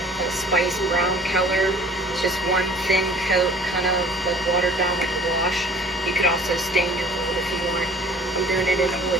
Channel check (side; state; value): both; normal; correlation 0.49